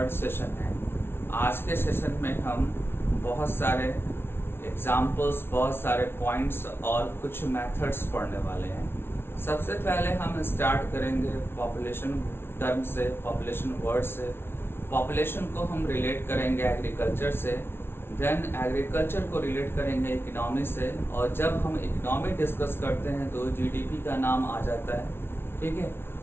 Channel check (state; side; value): late; right; 0.11 ms